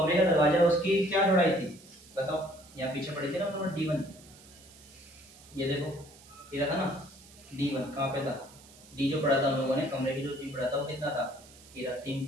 का दरवाजा है उसकी क्या चौड़ाई थी बताओ, यहाँ पीछे पढ़े थे ना उन्होंने D1, ये देखो ये था ना D1, कहाँ पे था D जो पढ़ा था हम लोगों ने, कमरे की जो D पढ़ा था वो कितना था, ये रहा 3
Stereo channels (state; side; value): noise; right; hiss, 22 dB below the sound